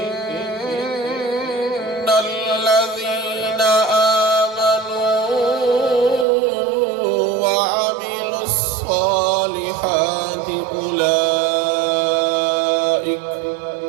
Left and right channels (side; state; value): left; drops out; at 6.2 s